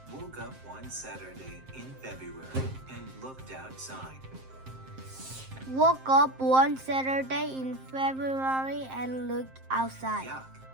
woke up one Saturday in February and looked outside. woke up one Saturday in February and looked outside. Yuck,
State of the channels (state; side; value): late; left; 7.6 ms